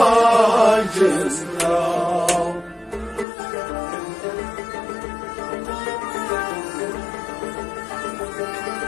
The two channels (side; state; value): right; drops out; at 3.2 s